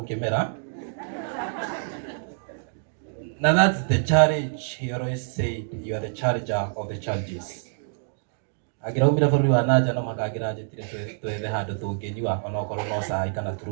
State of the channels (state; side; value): silent; left; digital silence